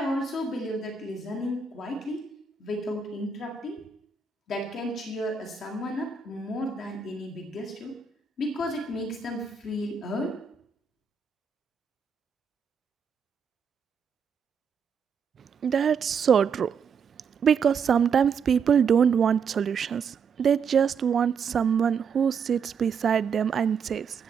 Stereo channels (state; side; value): quieter; left; 6.0 dB